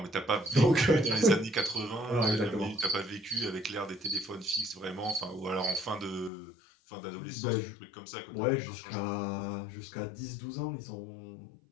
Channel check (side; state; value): right; drops out; at 6.3 s